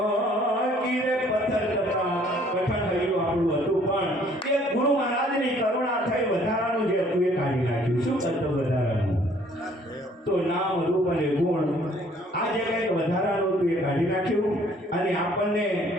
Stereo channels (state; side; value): normal; both; correlation 0.59